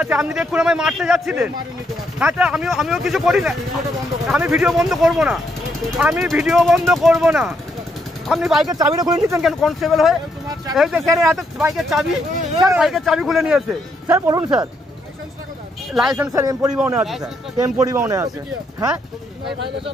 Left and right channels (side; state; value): both; normal; correlation 0.76